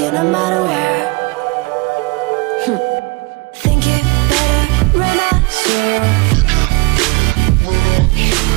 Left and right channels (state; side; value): quieter; left; 25.2 dB